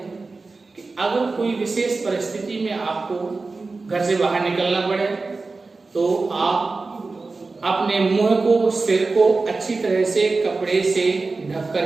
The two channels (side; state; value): left; quieter; 3.8 dB